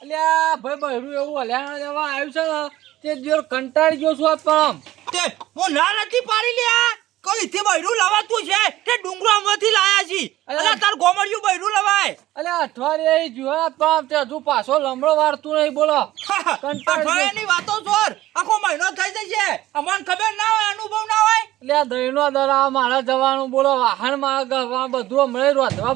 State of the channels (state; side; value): quieter; left; 15.5 dB